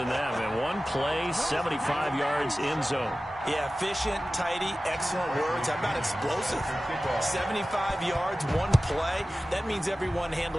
that. Man, one play, 75 yards in zone. Yeah, efficient, tidy, excellent words. How about explosive? 75 yards, one play. That means everyone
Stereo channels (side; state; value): both; normal; correlation 0.96